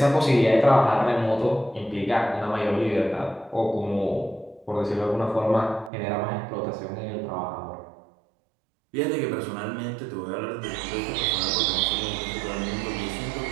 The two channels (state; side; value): drops out; left; at 5.9 s